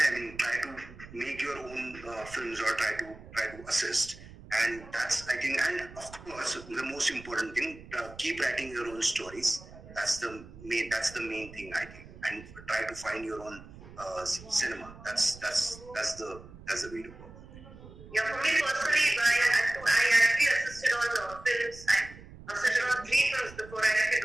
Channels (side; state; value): right; noise; rumble, 18 dB below the sound